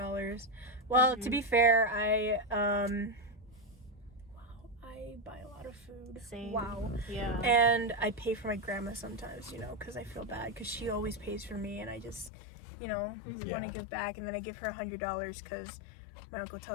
Well, to be fair, I buy a lot of food. Same. Wow. Yeah. And I pay for my grandma sometimes, you know, because I feel bad because she always pays for me, and I just, you know, want to give back. And then I give her $100 because my uncle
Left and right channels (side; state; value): right; drops out; at 12.3 s